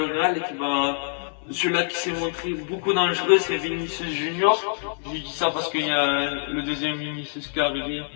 Real celui-là qui s'est montré beaucoup dangereux, c'est Vinicius Junior. Je dis ça parce qu'il y a le deuxième Vinicius qui est arrivé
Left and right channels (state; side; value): silent; right; 62 dB below the other